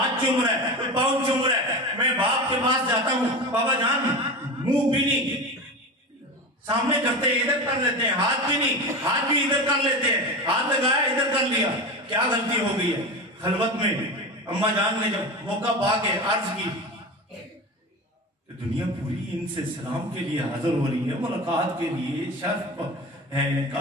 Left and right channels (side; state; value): both; normal; correlation 0.27